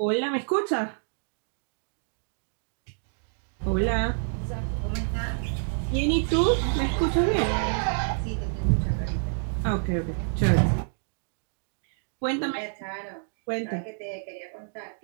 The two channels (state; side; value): silent; left; digital silence